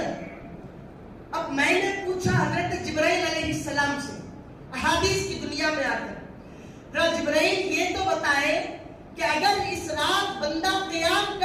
اب میں نے پوچھا حضرت جبرائیل علیہ السلام سے احادیث کی دنیا میں آ کر, جبرائیل یہ تو بتائے کہ اگر اس رات بندہ قیام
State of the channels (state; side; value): identical; both; correlation 1.00